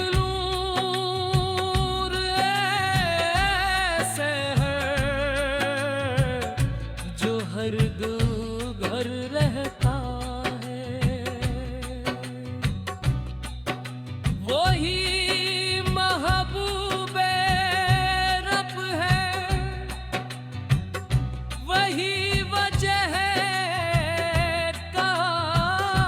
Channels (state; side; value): identical; both; correlation 1.00